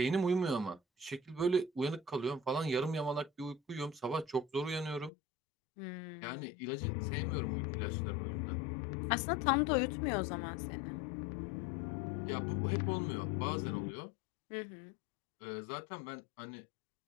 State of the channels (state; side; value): drops out; right; at 5.1 s